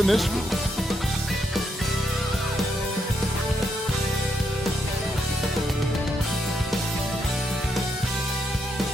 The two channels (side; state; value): both; normal; correlation 0.78